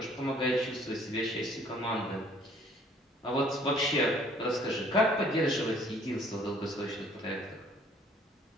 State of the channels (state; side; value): normal; both; correlation 0.58